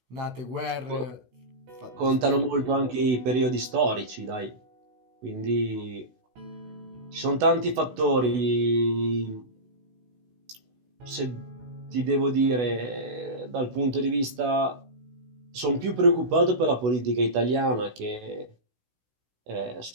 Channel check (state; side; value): late; left; 16 ms